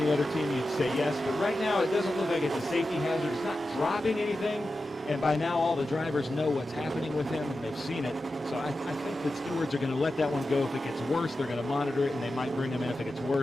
other team, you'd say yes. But right now, it doesn't look like it's a safety hazard. It's not dropping anything, and by now all the drivers know what's happening with him, and they've seen it. So I think the stewards are going to let that one go. If it gets worse, they're going to monitor it, and they might bring him in if it gets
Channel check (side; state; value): both; normal; correlation 0.92